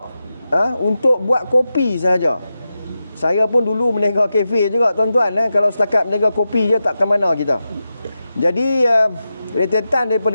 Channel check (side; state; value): both; inverted; correlation -0.90